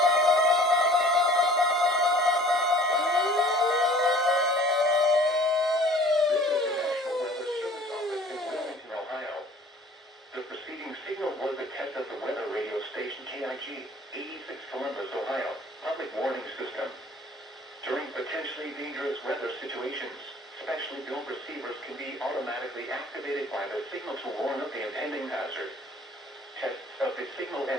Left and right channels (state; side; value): normal; both; correlation 0.50